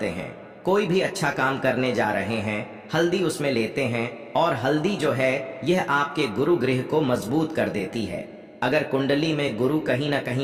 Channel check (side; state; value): both; identical; correlation 1.00